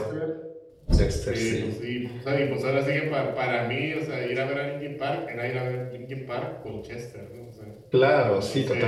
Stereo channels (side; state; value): both; identical; correlation 1.00